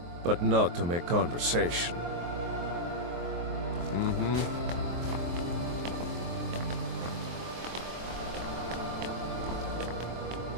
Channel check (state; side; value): late; left; 23 ms